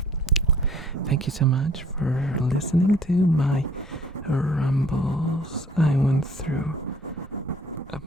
Thank you so much for listening to my rumbles. I went through a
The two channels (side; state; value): both; normal; correlation 0.56